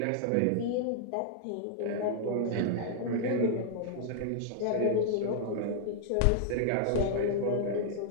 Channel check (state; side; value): different; both; correlation -0.01